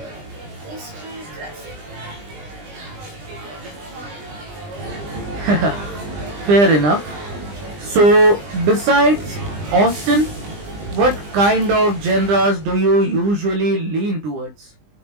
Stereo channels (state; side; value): late; left; 20 ms